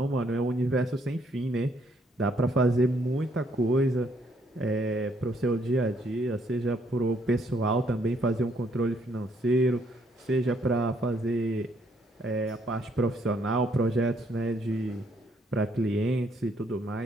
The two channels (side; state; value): both; normal; correlation 0.70